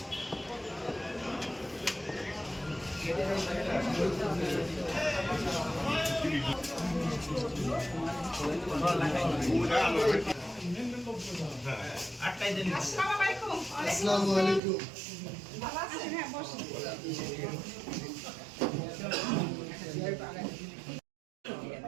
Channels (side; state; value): left; drops out; at 14.6 s